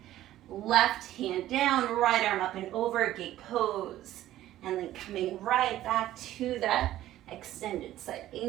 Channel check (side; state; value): left; quieter; 13.8 dB